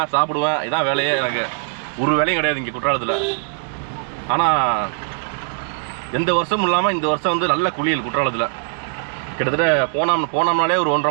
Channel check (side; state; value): left; silent; 64 dB below the other